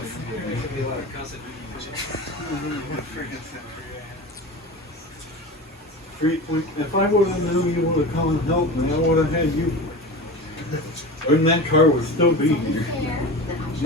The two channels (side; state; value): both; normal; correlation 0.30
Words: day. If I would have known you would have come and helped me, I would have had you. And that car would still be here.